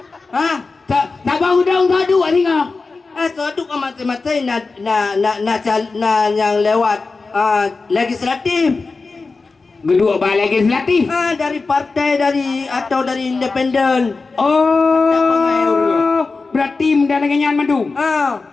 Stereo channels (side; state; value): right; quieter; 4.0 dB